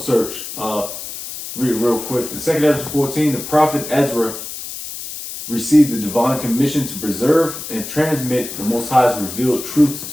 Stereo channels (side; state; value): left; noise; hiss, 9 dB below the sound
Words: search. Read it real quick. In Second Ezra 14, the prophet Ezra received the divine commission to preserve and transmit the Most High's revealed truths